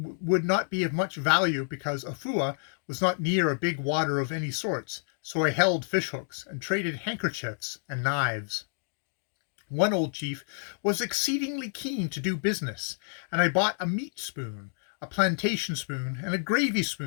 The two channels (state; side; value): silent; right; digital silence